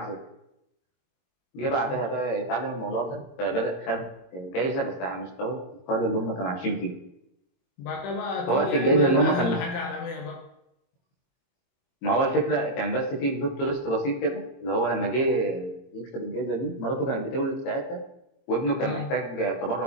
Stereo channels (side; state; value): right; late; 22 ms